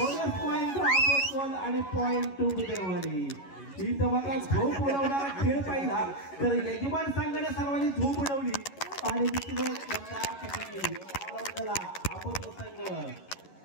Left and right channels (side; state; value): right; late; 11 ms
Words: पॉइंट आणि पॉइंट 2 बुधरवाडी इथं मात्र झोप उडवणारा खेळ पाहिला तर यजमान संघाने सर्वांनी झोप उडवली आणि संघ